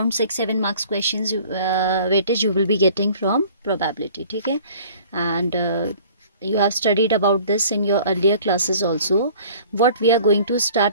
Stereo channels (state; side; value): inverted; both; correlation -0.50